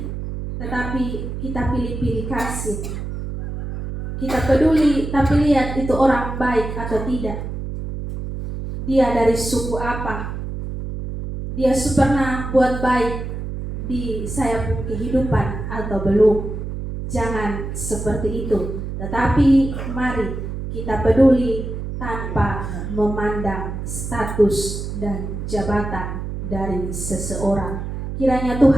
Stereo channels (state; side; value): noise; right; hum, 6 dB below the sound